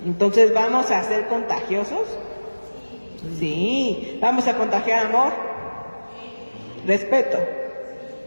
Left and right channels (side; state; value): both; inverted; correlation -1.00